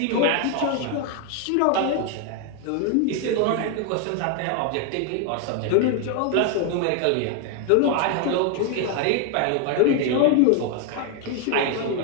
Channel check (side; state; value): both; different; correlation 0.01